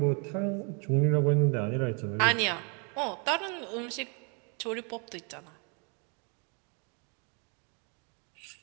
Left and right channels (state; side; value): quieter; left; 35.8 dB